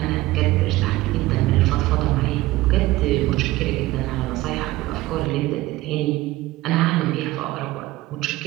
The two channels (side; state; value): left; quieter; 17.9 dB